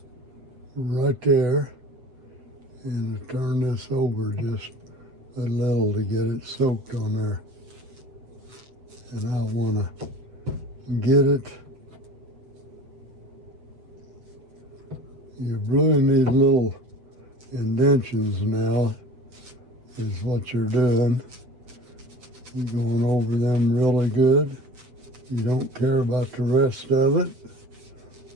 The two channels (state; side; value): late; left; 7.9 ms